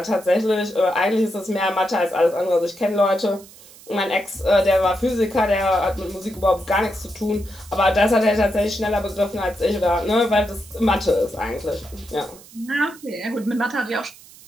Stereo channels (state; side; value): noise; right; hiss, 21 dB below the sound